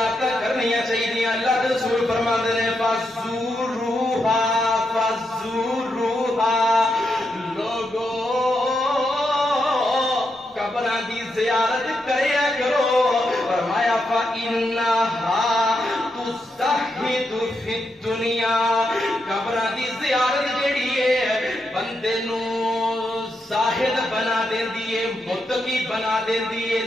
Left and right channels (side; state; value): both; normal; correlation 0.83